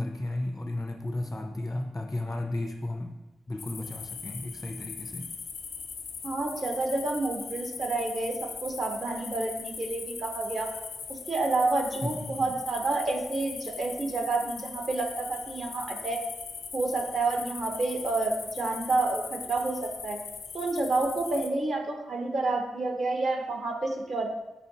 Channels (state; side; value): normal; both; correlation 0.84